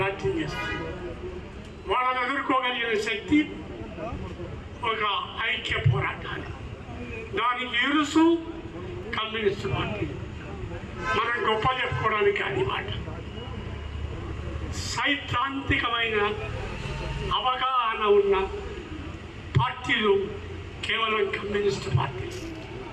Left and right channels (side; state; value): both; identical; correlation 1.00